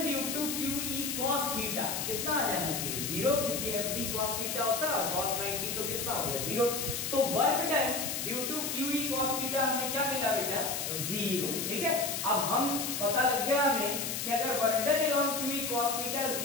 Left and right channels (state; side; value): noise; left; hiss, 2 dB below the sound